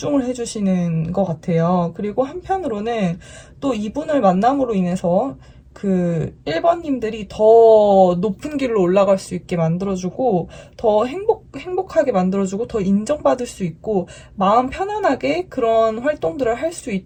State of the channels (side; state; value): both; identical; correlation 1.00